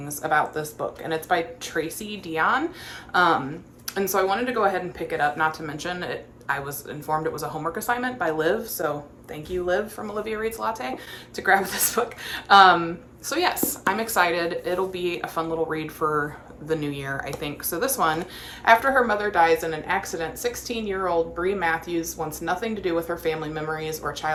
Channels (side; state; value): both; identical; correlation 1.00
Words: about this book. And it's by Tracy Dion. And so I wanted to go ahead and pick it up, not to mention it. I was informed it was a homework assignment by Liv, so thank you, Liv, from Olivia Reads Latte, to grab this book. So yes, I'm excited. It'll be a fun little read for the new year, I think. So this one, after her mother dies in an accident, 16-year-old Bree Matthews wants nothing to do with her family memories or